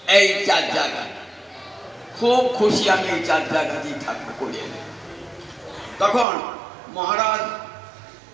এই চার জায়গায় খুব খুশি আমি, এই চার জায়গাতেই থাকবো করিয়ে। তখন মহারাজ,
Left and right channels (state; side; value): drops out; left; at 6.2 s